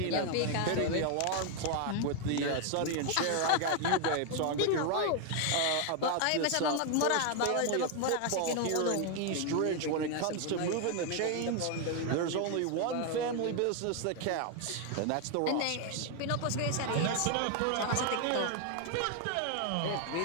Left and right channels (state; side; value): different; both; correlation 0.01